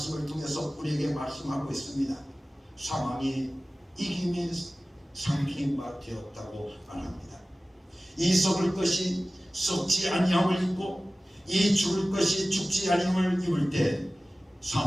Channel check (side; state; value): both; normal; correlation 0.97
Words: 통해서 우리에게 말씀하고 있습니다. 사망이 이김이 삼킨 바 되었다고 말합니다. 이 썩을 것이 썩지 아니함을 입고 이 죽을 것이 죽지 아니함을 입을 때